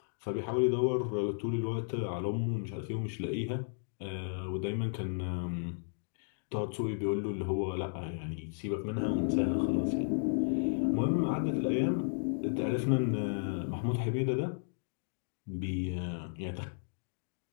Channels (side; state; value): right; silent; digital silence